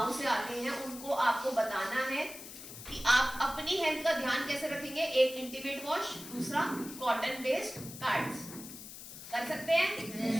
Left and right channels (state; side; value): noise; left; hiss, 13 dB below the sound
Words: से आते हैं, उनको आपको बताना है कि आप अपनी हेल्थ का ध्यान कैसे रखेंगे। एक इंटीमेट वॉश, दूसरा कॉटन बेस्ड पैड्स। कर सकते हैं